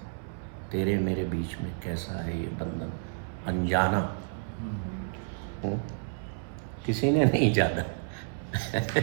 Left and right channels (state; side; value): silent; left; 58 dB below the other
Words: तेरे मेरे बीच में कैसा है ये बंधन अनजाना। किसी ने नहीं जाना